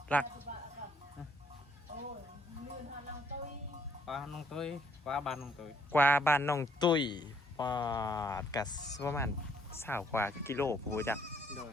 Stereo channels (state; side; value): normal; both; correlation 0.66